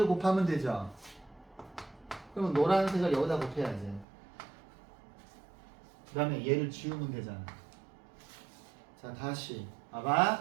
곱하면 되죠. 그러면 노란색을 여기다 곱해야지. 그 다음에 얘를 지우면 되잖아. 자, 다시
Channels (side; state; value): left; drops out; at 4.0 s